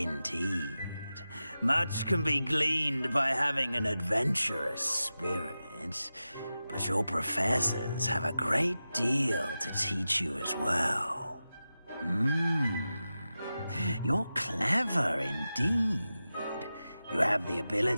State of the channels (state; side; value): inverted; both; correlation -0.93